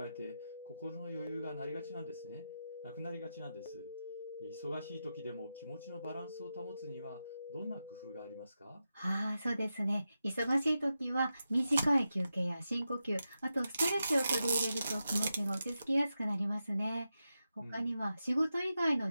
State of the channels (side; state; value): both; inverted; correlation -0.90